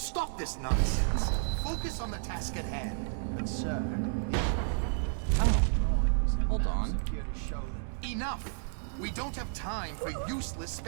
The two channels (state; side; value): silent; left; digital silence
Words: this nonsense! Focus on the task at hand. But sir, Oh, drawings and hold maps on. appear to show that... Enough! We don't have time for useless